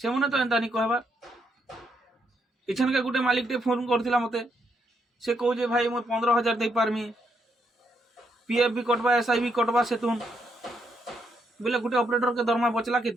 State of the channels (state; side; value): normal; both; correlation 0.77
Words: मने तो एंता नहीं कहबा इछन के गुटे मालिक टे फोन करथिला मते से कहू जे भाई मैं 15,000 दे पारमी पीएफ भी कटवा एसआई भी कटवा से तुम बोले गुटे ऑपरेटर के दरमा बचला